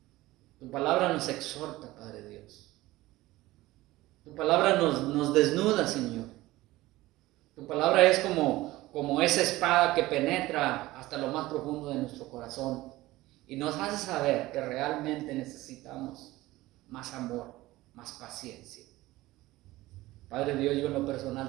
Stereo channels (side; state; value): left; quieter; 18.0 dB